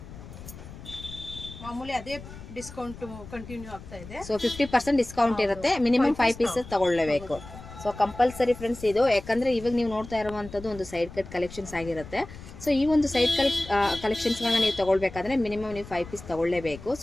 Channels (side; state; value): left; noise; rumble, 15 dB below the sound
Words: ಮಾಮೂಲಿ ಅದೇ ಡಿಸ್ಕೌಂಟ್ ಕಂಟಿನ್ಯೂ ಆಗ್ತಾ ಇದೆ. ಸೊ 50% ಡಿಸ್ಕೌಂಟ್ ಇರುತ್ತೆ. ಮಿನಿಮಮ್ 5 ಪೀಸಸ್ ತಗೊಳ್ಳೇಬೇಕು. ಸೊ ಕಂಪಲ್ಸರಿ ಫ್ರೆಂಡ್ಸ್ ಇದು, ಯಾಕಂದ್ರೆ ಇವಾಗ ನೀವು ನೋಡ್ತಾ ಇರುವಂತದ್ದು ಒಂದು ಸೈಡ್ ಕಟ್ ಕಲೆಕ್ಷನ್ಸ್ ಆಗಿರುತ್ತೆ. ಸೊ ಈ ಒಂದು ಸೈಡ್ ಕಲೆಕ್ಷನ್ಸ್ಗಳನ್ನ ನೀವು ತಗೊಳ್ಬೇಕಾದ್ರೆ ಮಿನಿಮಮ್ ನೀವು 5 ಪೀಸ್ ತಗೊಳ್ಳೇಬೇಕು.